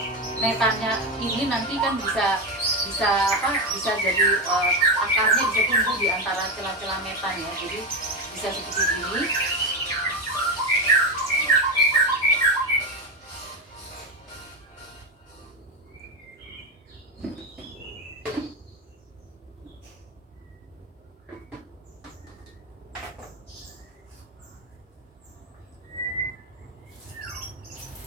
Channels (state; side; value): normal; both; correlation 0.13